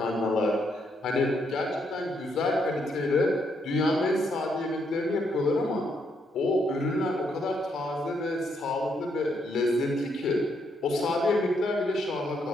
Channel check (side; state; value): both; normal; correlation 0.75